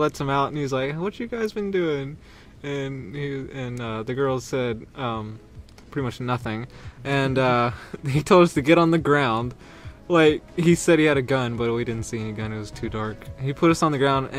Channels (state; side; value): identical; both; correlation 1.00